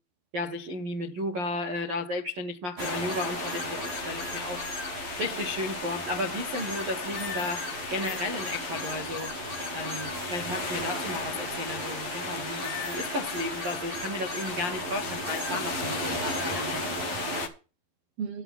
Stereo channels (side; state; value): left; late; 11 ms